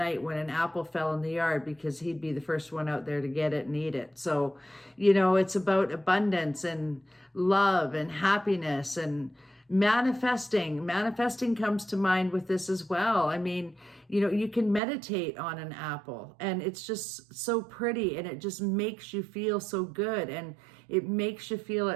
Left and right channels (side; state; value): left; drops out; at 14.8 s